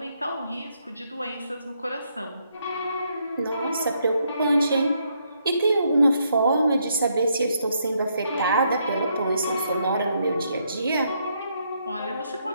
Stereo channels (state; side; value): inverted; both; correlation -0.75